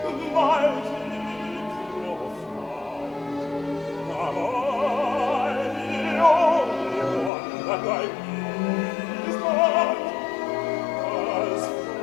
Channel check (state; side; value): drops out; right; at 7.3 s